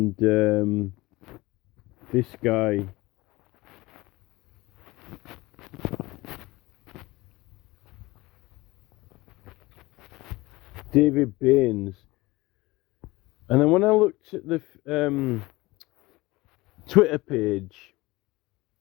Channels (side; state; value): right; quieter; 20.9 dB